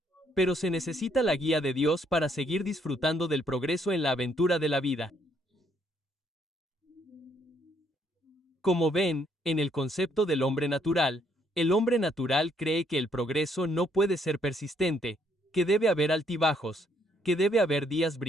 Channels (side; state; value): both; normal; correlation 0.69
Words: Pero se necesita la guía de Dios para seguir disfrutando del progreso en la aventura de la vida. Como ven, en el concepto del hombre natural, el hombre natural cree que el progreso no puede ser persistente, que debe haber altibajos, que debe haber días